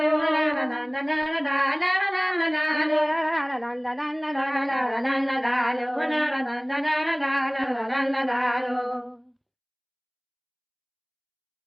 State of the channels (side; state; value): both; identical; correlation 1.00